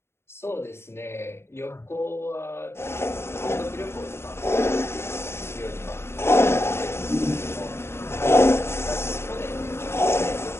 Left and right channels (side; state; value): right; late; 0.12 ms